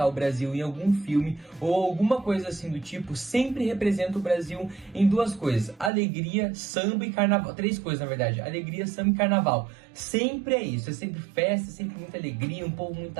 o Brasil em algum filme ou alguma coisa assim do tipo, sempre representa o Brasil em duas coisas: alegria, samba e carnaval. Três coisas, na verdade: alegria, samba e carnaval. Sempre é isso, é sempre festa, é sempre muita alegria, um povo muito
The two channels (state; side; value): drops out; left; at 5.9 s